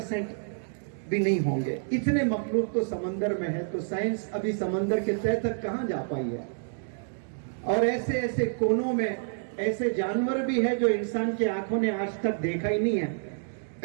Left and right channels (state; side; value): silent; left; digital silence